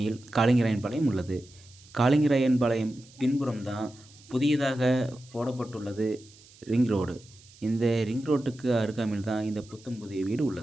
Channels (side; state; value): right; noise; hiss, 24 dB below the sound